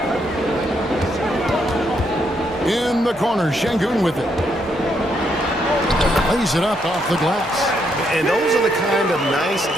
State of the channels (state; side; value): normal; both; correlation 0.76